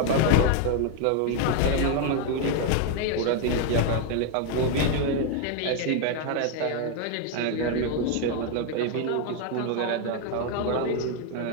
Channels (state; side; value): different; both; correlation 0.01